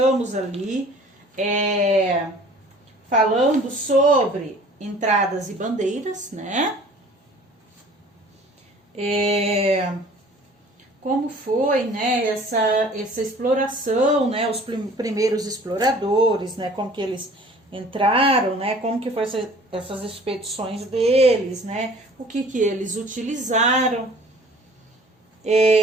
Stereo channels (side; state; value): both; normal; correlation 0.49